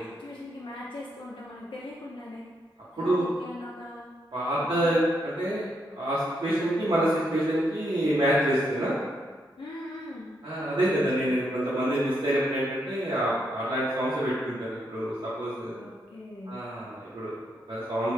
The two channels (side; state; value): both; normal; correlation 0.78